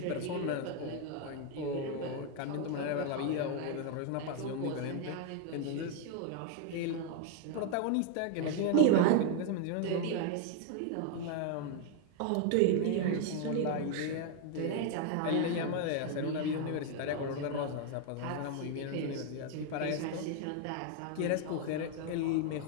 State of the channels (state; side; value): different; both; correlation 0.00